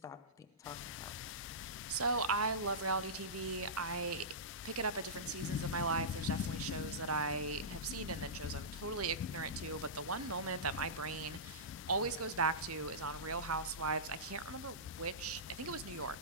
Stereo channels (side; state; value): both; normal; correlation -0.18